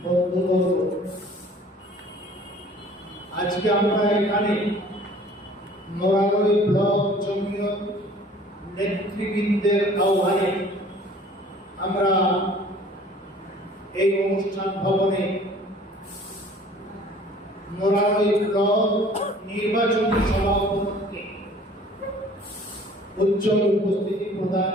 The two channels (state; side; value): normal; both; correlation 0.51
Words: বন্ধুবর্গ, আজকে আমরা এখানে মোরারই ব্লক জমিয়ত নেতৃবৃন্দের আহ্বানে আমরা এই অনুষ্ঠান ভবনে মোরারই ব্লক নির্বাচনী সভা উপলক্ষে উজ্জ্বল উপস্থিতি প্রদান